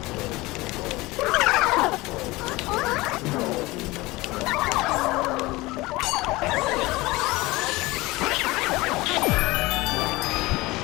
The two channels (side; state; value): right; quieter; 21.1 dB